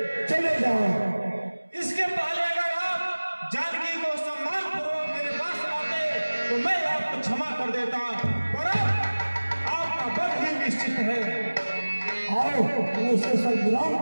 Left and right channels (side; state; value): both; inverted; correlation -1.00